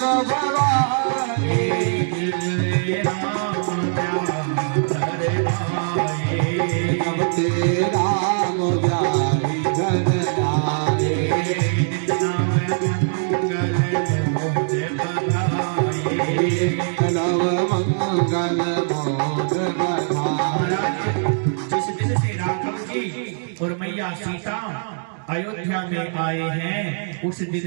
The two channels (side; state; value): left; silent; digital silence